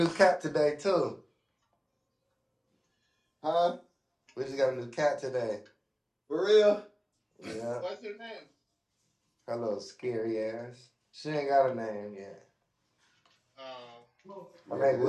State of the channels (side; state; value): both; identical; correlation 1.00